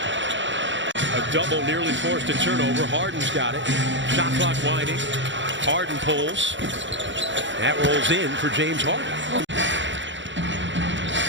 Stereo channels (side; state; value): left; late; 0.54 ms